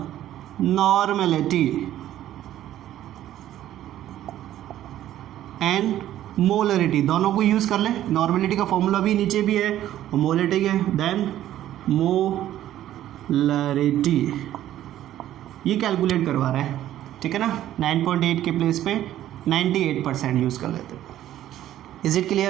normality and molarity, दोनों को use कर लें। Normality का formula भी नीचे भी है और मोलरिटी के, देन मोलरिटी ये कैलकुलेट करवा रहा है, ठीक है ना। 9.8 के प्लेस पे 98% यूज़ कर लेते हैं। Is it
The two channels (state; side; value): quieter; left; 12.6 dB